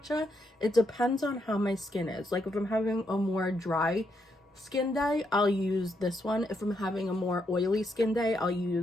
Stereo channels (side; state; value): both; normal; correlation 0.79